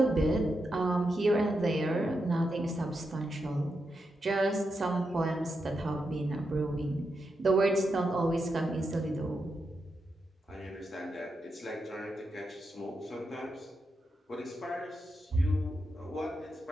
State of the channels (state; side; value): normal; both; correlation 0.85